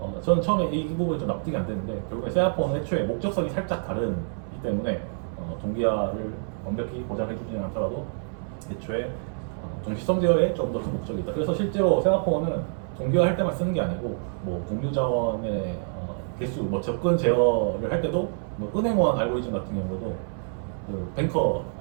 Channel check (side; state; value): left; silent; 60 dB below the other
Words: 저는 처음에 이 부분이 좀 납득이 안 되는데 결국에 세아포는 애초에 목적성이 살짝 다르기 때문에 동기화를 완벽히 보장해 주지는 않더라도 애초에 동시성 제어에 좀 더 큰 목적이 있다. 그래서 실제로 세마포는 동기화 할 때만 쓰는 게 아니고 뭐 공유 자원의 개수, 뭐 접근 제어를 할 때도 뭐 은행원 알고리즘 같은 경우도 그 뱅커